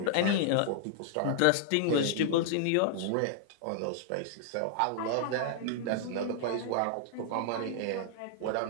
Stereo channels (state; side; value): different; both; correlation -0.01